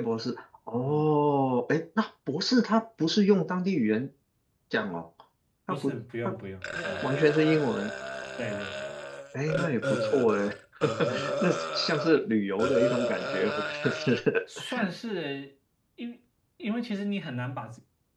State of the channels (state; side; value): identical; both; correlation 1.00